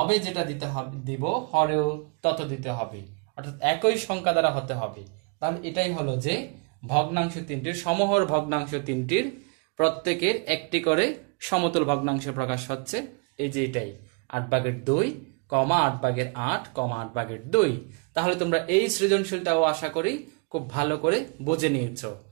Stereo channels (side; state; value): left; quieter; 33.9 dB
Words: যেটা দিতে হবে দিব, হরেও তত দিতে হবে, অর্থাৎ একই সংখ্যা দ্বারা হতে হবে। তাহলে এটাই হলো যে ভগ্নাংশ তিনটির, সমহর ভগ্নাংশ তিনটির প্রত্যেকের একটি করে সমতল ভগ্নাংশ প্রকাশ হচ্ছে। এই যে এটাই 8/2, 8/8, 8/2। তাহলে তোমরা এই সৃজনশীলটাও আশা করি খুব ভালো করে বুঝে নিয়েছ।